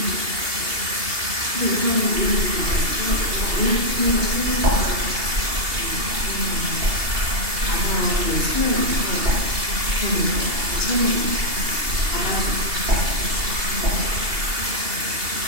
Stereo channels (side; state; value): left; late; 2.8 ms